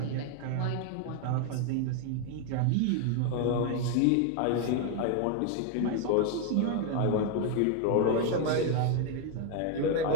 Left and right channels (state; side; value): different; both; correlation 0.00